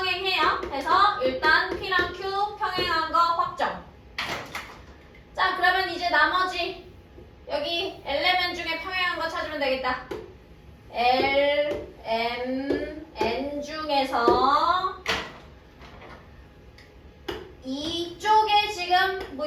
그래서 일단 P랑 Q 평행한 거 확정. 자, 그러면 이제 나머지 여기 엘레멘 중에 평행한 거 찾으면 되겠다. L, M, N 중에서 이쪽에 지금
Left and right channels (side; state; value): both; identical; correlation 1.00